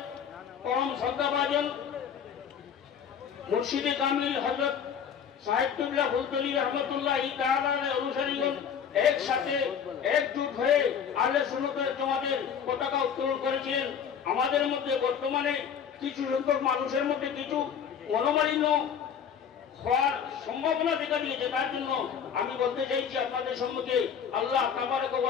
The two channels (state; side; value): quieter; right; 7.7 dB